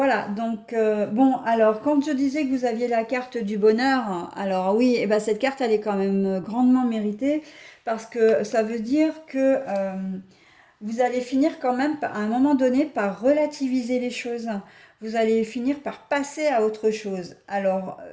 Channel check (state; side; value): identical; both; correlation 1.00